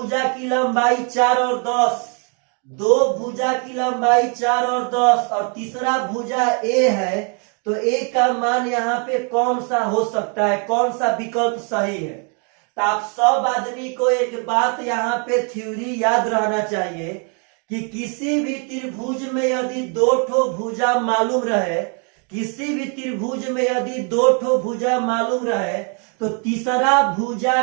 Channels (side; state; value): left; quieter; 38.6 dB